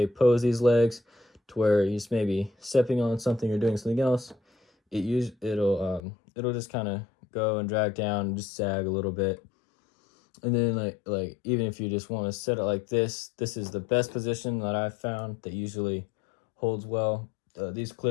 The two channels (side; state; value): right; drops out; at 6.0 s